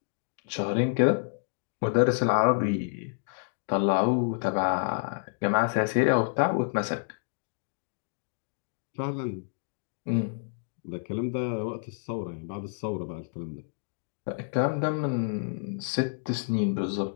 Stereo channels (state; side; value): silent; right; digital silence